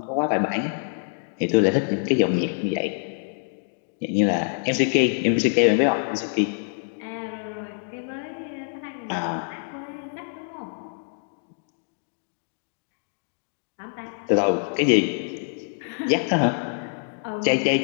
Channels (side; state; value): right; silent; digital silence